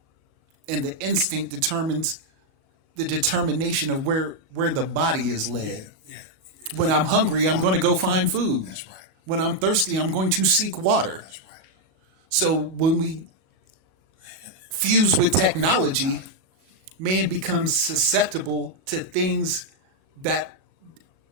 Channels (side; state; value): left; late; 37 ms